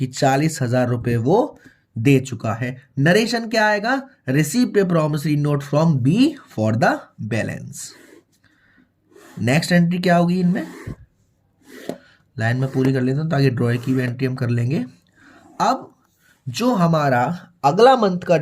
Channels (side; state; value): both; identical; correlation 1.00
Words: 40,000 रुपए वो दे चुका है। नरेशन क्या आएगा, received a promissory note from B for the balance. Next entry क्या होगी, इनमें लाइन में पूरी कर लेता हूं ताकि ड्रॉ की भी एंट्री हम कर लेंगे। अब जो हमारा अगला मंथ का